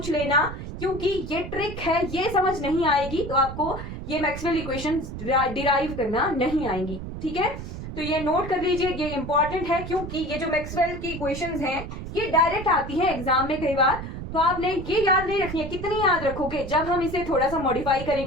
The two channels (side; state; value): right; noise; rumble, 9 dB below the sound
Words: लेना, क्योंकि ये ट्रिक है, ये समझ नहीं आएगी तो आपको ये मैक्सवेल इक्वेशन डिराइव करना नहीं आएंगी, ठीक है। तो ये नोट कर लीजिए, ये इंपॉर्टेंट है, क्योंकि ये जो मैक्सवेल की इक्वेशंस हैं ये डायरेक्ट आती हैं एग्जाम में कई बार, तो आपने ये याद नहीं रखनी है। कितनी याद रखोगे, जब हम इसे थोड़ा सा मॉडिफाई